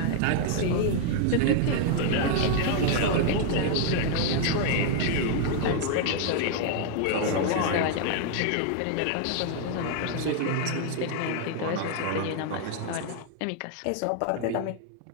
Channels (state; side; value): different; both; correlation 0.00